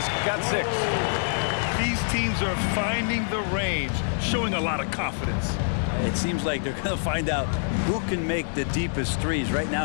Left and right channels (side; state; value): right; silent; digital silence